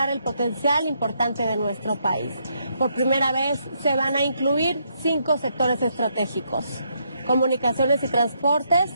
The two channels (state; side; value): inverted; both; correlation -0.76